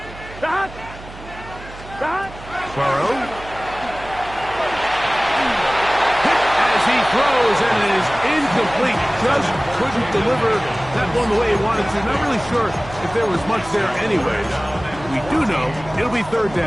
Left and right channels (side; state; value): right; noise; hum, 16 dB below the sound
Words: Burrow. As he throws, and it is incomplete. Just couldn't deliver that one the way he wanted to. Not really sure if there was much there anyway. We do know it'll be 3rd